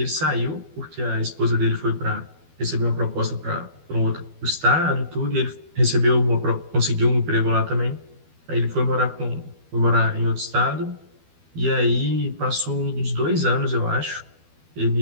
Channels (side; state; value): left; late; 12 ms